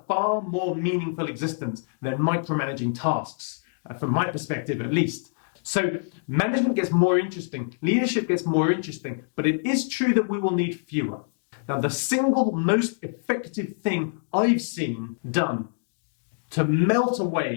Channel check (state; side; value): silent; right; digital silence